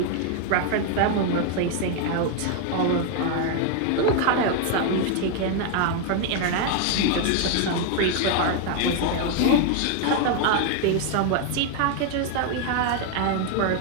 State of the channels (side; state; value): both; different; correlation 0.01